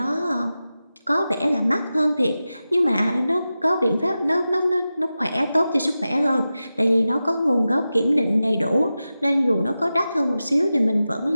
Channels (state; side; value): inverted; both; correlation -0.93